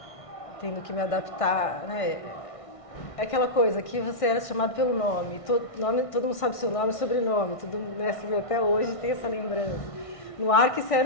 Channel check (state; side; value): late; right; 1.6 ms